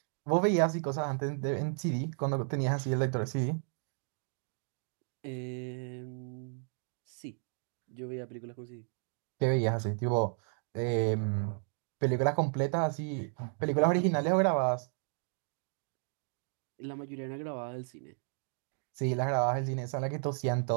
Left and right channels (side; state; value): left; silent; 55 dB below the other